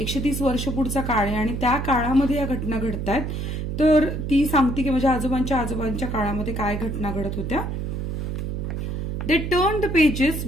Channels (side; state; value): right; noise; hum, 3 dB below the sound